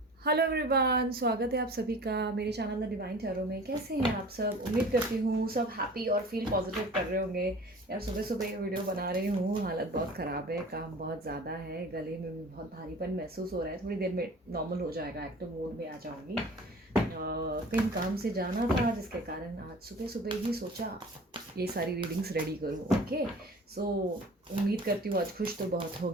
हेलो एवरीवन, स्वागत है आप सभी का मेरे चैनल द डिवाइन टैरो में। कैसे हैं आप सब? उम्मीद करती हूँ सब हैप्पी और फील पॉजिटिव कर रहे होंगे। यार सुबह सुबह ये वीडियो बना रही हूँ, हालत बहुत ख़राब है, काम बहुत ज़्यादा है, गले में भी बहुत भारीपन महसूस हो रहा है। थोड़ी देर में नॉर्मल हो जाएगा, एक्टिव मोड में आ जाऊँगी। कहीं काम से जाना था जिसके कारण आज सुबह सुबह ही सोचा ये सारी रीडिंग्स रेडी करूँ। ओके, सो उम्मीद करती हूँ आज खुश तो बहुत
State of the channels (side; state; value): both; normal; correlation 0.43